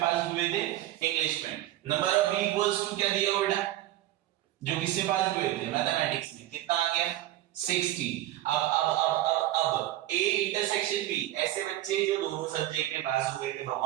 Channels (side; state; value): left; quieter; 14.6 dB